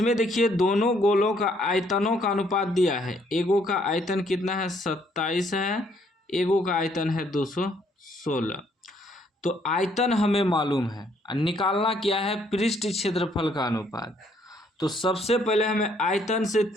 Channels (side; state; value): both; normal; correlation 0.67